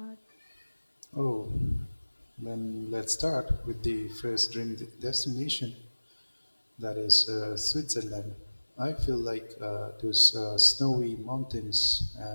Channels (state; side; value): inverted; both; correlation -1.00